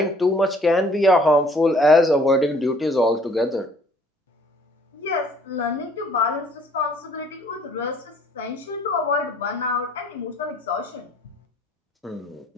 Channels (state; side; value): normal; both; correlation 0.58